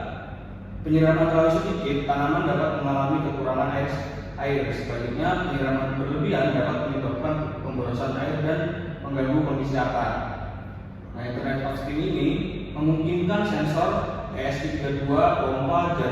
penyiraman terlalu sedikit, tanaman dapat mengalami kekurangan air. Sebaliknya, penyiraman berlebihan dapat menyebabkan pemborosan air dan mengganggu kondisi akar. Nah, Internet of Things ini memungkinkan sensor ESP32, pompa,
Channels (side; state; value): both; identical; correlation 1.00